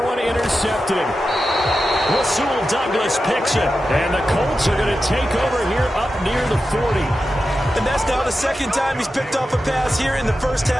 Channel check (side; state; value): both; normal; correlation 0.91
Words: one intercepted. Rasul Douglas picks it. And the Colts are going to take over here up near the 40. And that's now the 2nd time he's picked off a pass here in the 1st